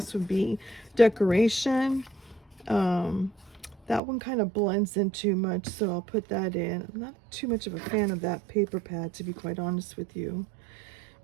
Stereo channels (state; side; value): drops out; left; at 4.0 s